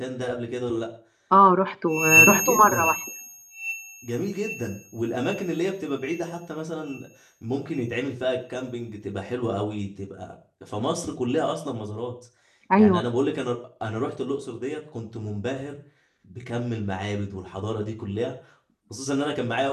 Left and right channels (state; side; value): identical; both; correlation 1.00